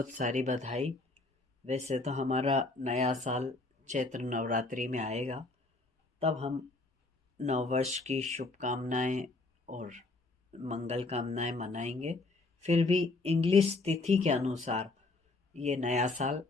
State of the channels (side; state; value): right; quieter; 3.3 dB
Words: सारी बधाई। वैसे तो हमारा नया साल चैत्र नवरात्रि में आएगा, तब हम नववर्ष की शुभकामनाएं और मंगल कामनाएं मनाएंगे। फिर भी इंग्लिश तिथि के अनुसार ये नया साल